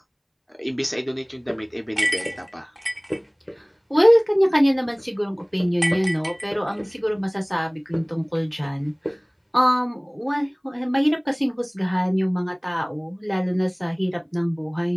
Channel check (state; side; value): identical; both; correlation 1.00